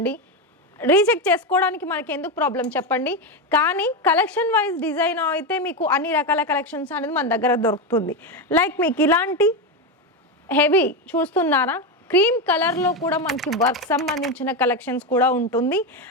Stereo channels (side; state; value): both; normal; correlation 0.12